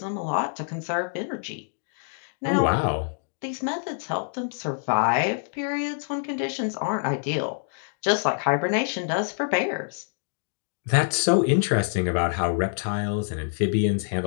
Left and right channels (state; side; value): silent; right; digital silence